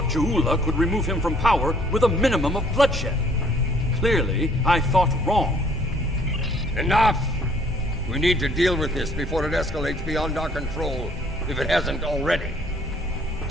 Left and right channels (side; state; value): both; normal; correlation 0.60